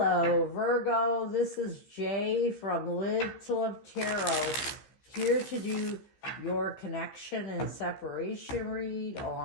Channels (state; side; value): late; right; 15 ms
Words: Virgo. This is Jay from Live to Love Tarot, here to do your connection and separation read